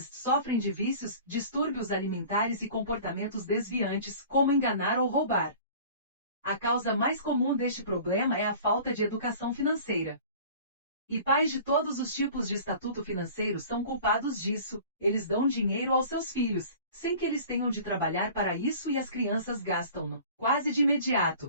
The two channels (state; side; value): inverted; both; correlation -0.44